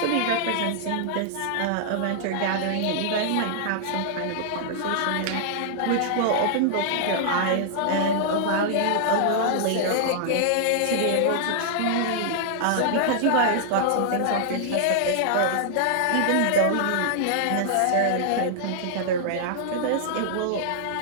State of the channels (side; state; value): both; different; correlation -0.01